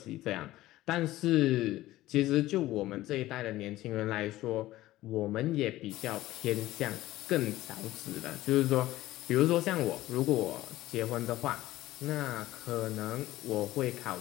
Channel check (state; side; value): quieter; right; 16.2 dB